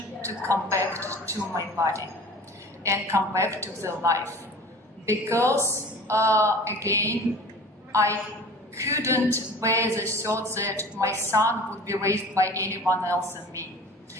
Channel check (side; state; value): both; normal; correlation 0.41